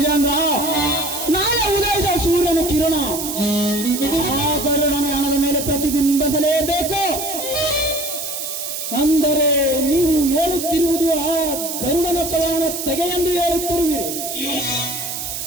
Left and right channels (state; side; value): noise; right; hiss, 5 dB below the sound